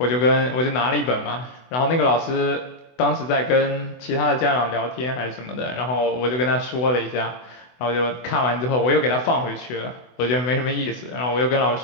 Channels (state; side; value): late; right; 24 ms